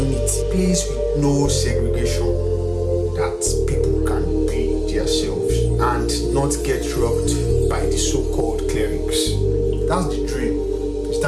a place with no segregation, that people can be themselves and not get robbed by the so-called clerics. That's the dream, is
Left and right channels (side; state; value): both; identical; correlation 1.00